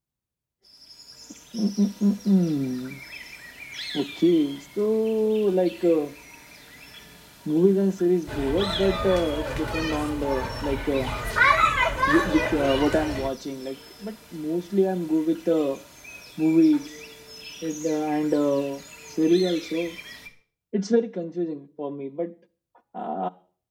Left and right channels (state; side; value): identical; both; correlation 1.00